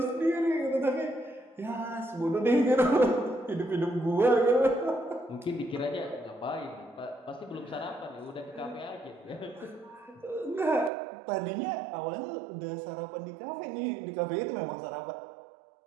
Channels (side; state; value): left; drops out; at 10.9 s